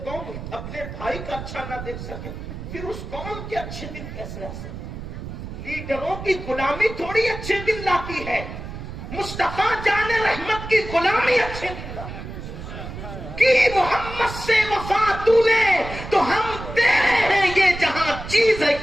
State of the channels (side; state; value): right; noise; rumble, 10 dB below the sound